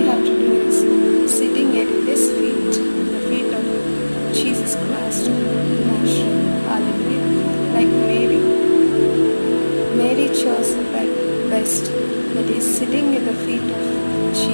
have to do is sitting at his feet, the feet of Jesus Christ, Nazareth. Hallelujah. Like Mary chose the best, that is sitting at the feet of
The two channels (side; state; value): both; inverted; correlation -1.00